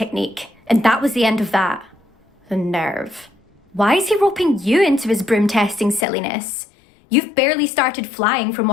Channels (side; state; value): right; drops out; at 6.1 s